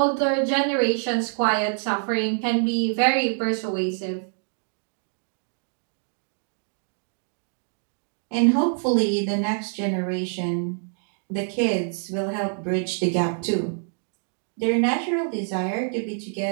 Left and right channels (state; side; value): silent; left; 56 dB below the other